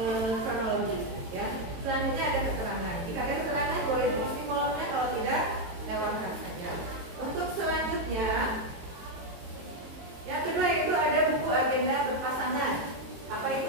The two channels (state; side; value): late; left; 22 ms